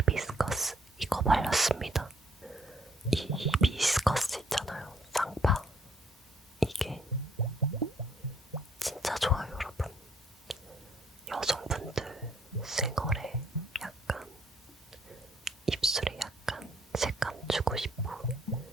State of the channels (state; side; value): normal; both; correlation 0.66